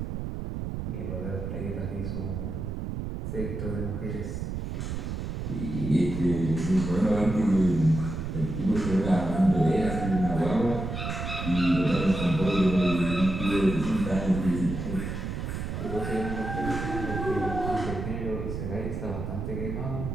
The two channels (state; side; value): noise; right; rumble, 4 dB below the sound